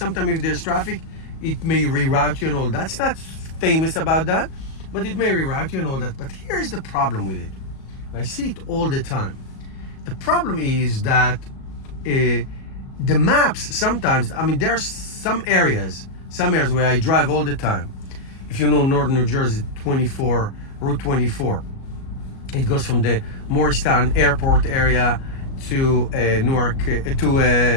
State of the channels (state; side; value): late; right; 37 ms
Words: if there's traffic, it may reroute you and all that. It's not famous about that, but it may reroute you and all that. But here's the problem with it. I see it all the time. The problem is that the maps sometimes, I mean, there's some areas where I drive all the time. If you know northern New Jersey, Route 24, it goes from the Morristown Airport area to Newark,